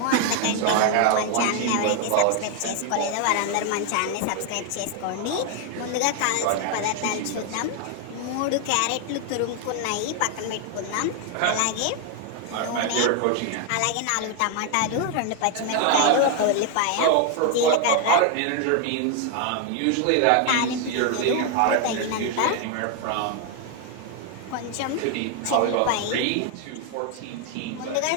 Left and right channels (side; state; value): both; different; correlation 0.00